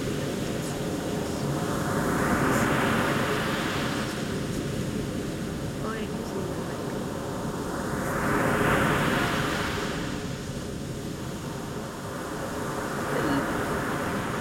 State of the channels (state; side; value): identical; both; correlation 1.00